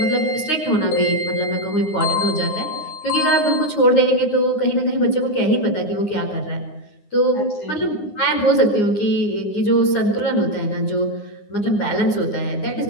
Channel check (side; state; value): right; late; 9.7 ms